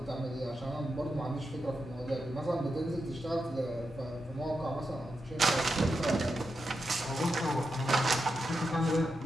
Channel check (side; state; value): both; normal; correlation 0.87